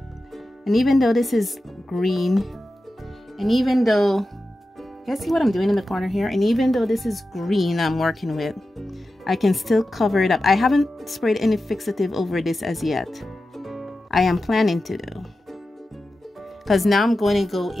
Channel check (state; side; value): normal; both; correlation 0.92